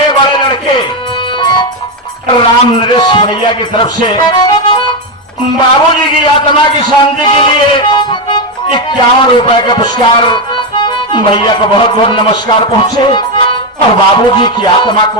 बड़े लड़के राम नरेश भैया की तरफ से बाबूजी की आत्मा की शांति के लिए 51 रुपए का पुरस्कार भैया को बहुत बहुत नमस्कार पहुंचे और बाबूजी की आत्मा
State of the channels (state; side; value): normal; both; correlation 0.07